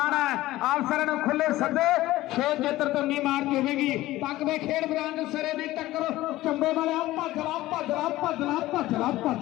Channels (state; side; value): quieter; right; 16.7 dB